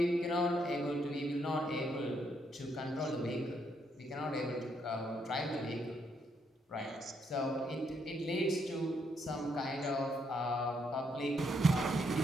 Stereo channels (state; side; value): normal; both; correlation 0.75